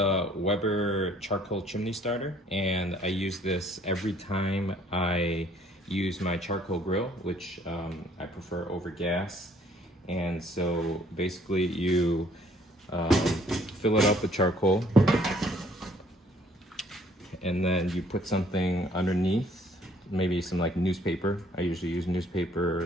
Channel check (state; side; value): normal; both; correlation 0.61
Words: Weber charcoal chimney starter, and I use this every time I use my charcoal grill, which I prefer over gas. And so basically you fill it up with charcoal, and then you put something underneath, maybe some like newspaper. I usually use newspaper